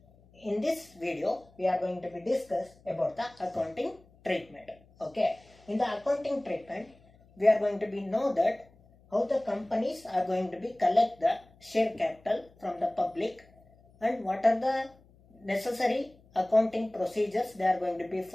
In this video, we are going to be discuss about the accounting treatment. Okay, in the accounting treatment, we are going to be know that how the companies are going to be collect the share capital from the public, and what are the necessary accounting procedures they are going to be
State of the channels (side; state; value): left; noise; hum, 28 dB below the sound